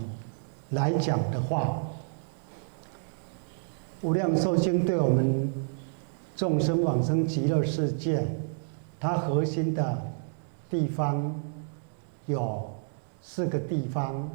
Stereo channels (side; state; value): left; silent; digital silence